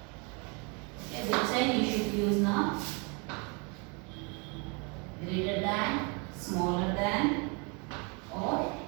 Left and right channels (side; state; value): left; quieter; 32.9 dB